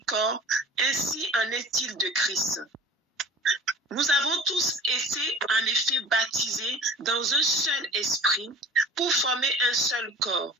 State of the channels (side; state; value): both; normal; correlation 0.42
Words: corps, ainsi en est-il de Christ. Nous avons tous été en effet baptisés dans un seul esprit pour former un seul corps,